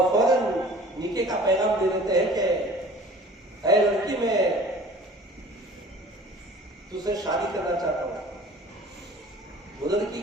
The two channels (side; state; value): both; normal; correlation 0.47